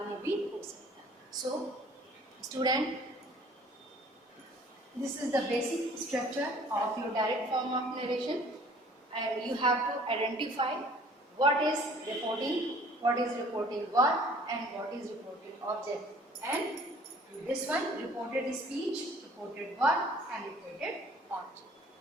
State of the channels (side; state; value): both; normal; correlation 0.53